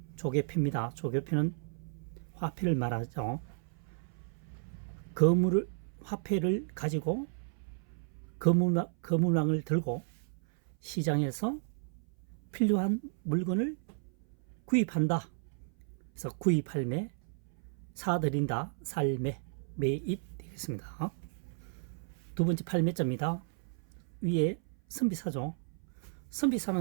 조개표입니다. 조개표는 화폐를 말하죠. 화폐를 가지고 거물망을 들고 시장에서 필요한 물건을 구입한다. 그래서 구입할매, 사들인다, 살매, 매입 되겠습니다. 두 번째 팔매자입니다. 위에 선비사죠.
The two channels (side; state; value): left; silent; 55 dB below the other